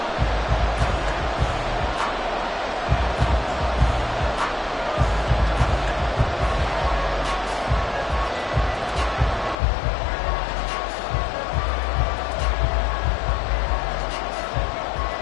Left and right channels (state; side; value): drops out; right; at 9.6 s